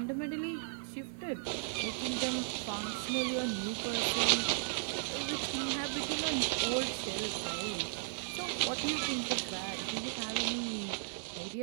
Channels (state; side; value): silent; left; digital silence